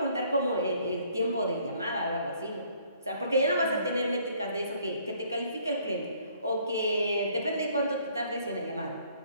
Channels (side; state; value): both; inverted; correlation -0.62